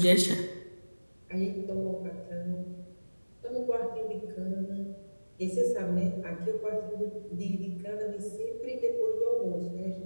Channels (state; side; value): inverted; both; correlation -1.00